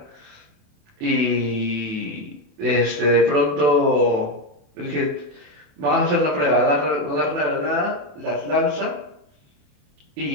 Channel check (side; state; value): left; late; 28 ms